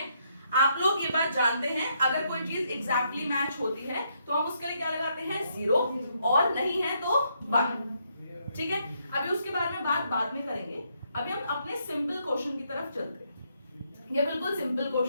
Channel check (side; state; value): both; inverted; correlation -0.75